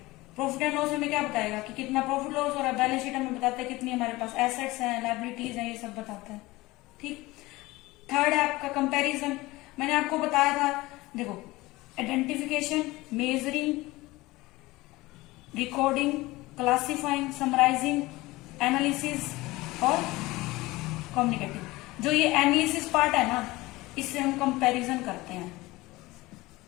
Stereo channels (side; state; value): right; quieter; 20.2 dB